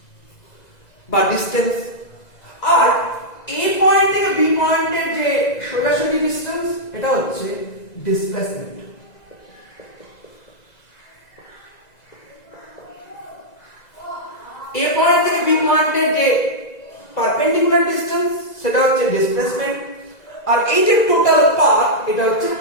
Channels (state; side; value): late; right; 1.9 ms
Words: বা ডিসটেন্স। আর এ পয়েন্ট থেকে বি পয়েন্টের যে সোজাসুজি ডিসটেন্স এটা হচ্ছে ডিসপ্লেসমেন্ট। এ পয়েন্ট থেকে বি পয়েন্টের যে পারপেন্ডিকুলার ডিসটেন্স সেটা হচ্ছে ডিসপ্লেসমেন্ট। আর এই যে টোটাল পাথ এটা হচ্ছে